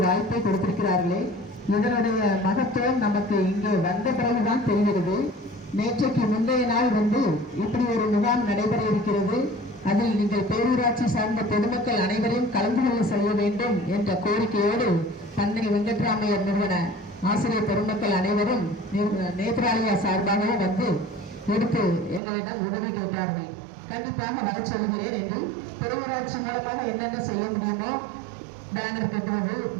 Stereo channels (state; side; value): drops out; left; at 22.2 s